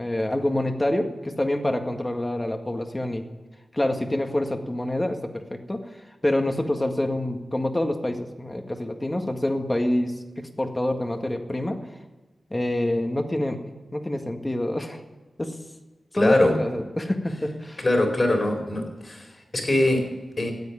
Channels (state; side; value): normal; both; correlation 0.97